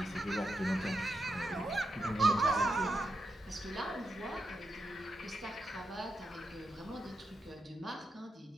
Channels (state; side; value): normal; both; correlation 0.85